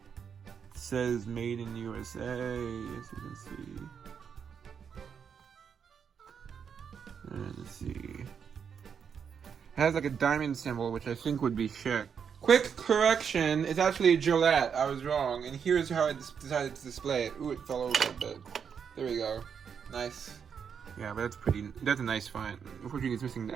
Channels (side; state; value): left; quieter; 7.1 dB